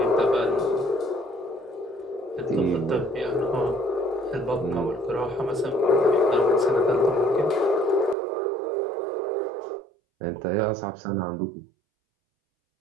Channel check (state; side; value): drops out; left; at 8.2 s